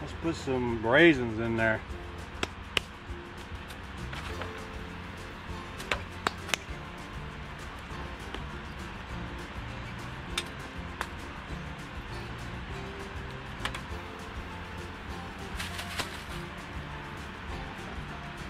put some raisins in there.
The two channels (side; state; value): both; identical; correlation 1.00